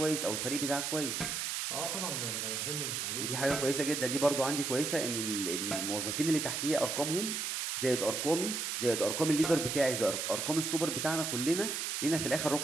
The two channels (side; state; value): right; noise; hiss, 2 dB below the sound